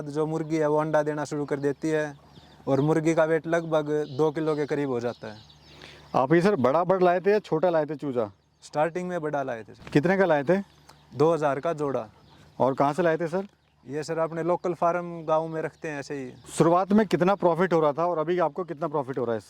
जो मुर्गी है वो अंडा देना शुरू कर देती है और मुर्गी का वेट लगभग 2 किलो के करीब हो जाता है। आप ये सर बड़ा बर्ड लाए थे या छोटा लाए थे चूजा? स्टार्टिंग में बड़ा लाए थे सर, कितने का लाए थे? 2000 का जोड़ा। और कहाँ से लाए थे सर? ये सर अपने लोकल फार्म गांव में रखते हैं ऐसे ही। शुरुआत में कितना प्रॉफिट हो रहा था और अभी आपको कितना प्रॉफिट हो रहा है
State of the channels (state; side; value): identical; both; correlation 1.00